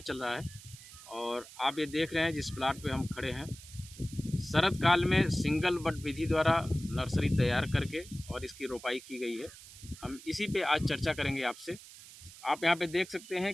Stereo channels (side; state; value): right; noise; hiss, 17 dB below the sound